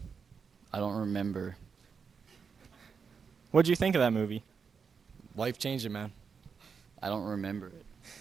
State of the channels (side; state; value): left; quieter; 5.9 dB